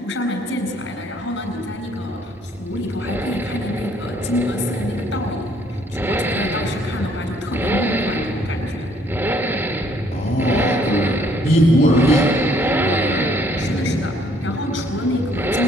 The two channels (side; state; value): both; normal; correlation 0.64